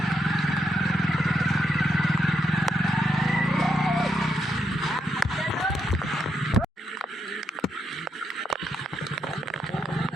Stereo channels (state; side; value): normal; both; correlation 0.79